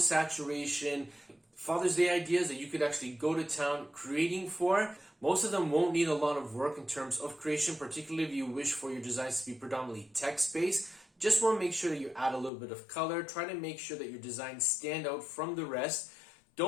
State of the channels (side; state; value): right; drops out; at 12.5 s